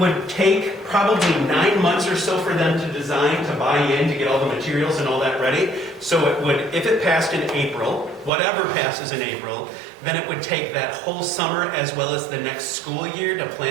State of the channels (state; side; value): drops out; left; at 8.3 s